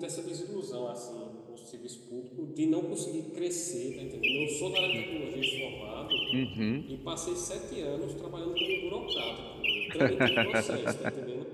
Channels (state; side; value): identical; both; correlation 1.00